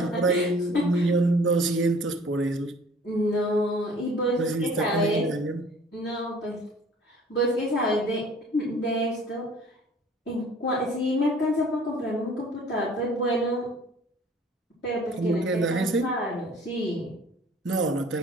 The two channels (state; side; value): normal; both; correlation 0.51